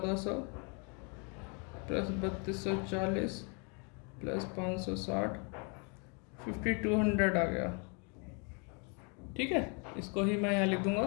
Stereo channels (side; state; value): right; quieter; 35.0 dB